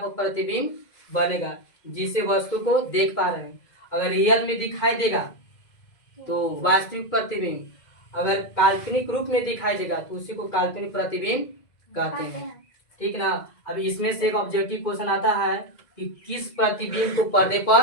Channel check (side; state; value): right; late; 2.0 ms